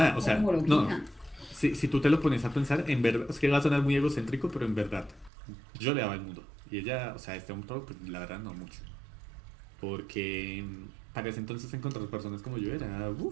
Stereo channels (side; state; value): left; drops out; at 5.3 s